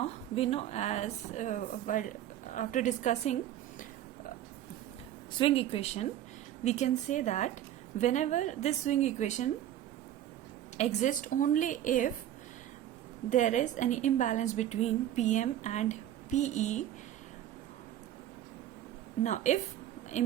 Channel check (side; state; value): left; quieter; 11.9 dB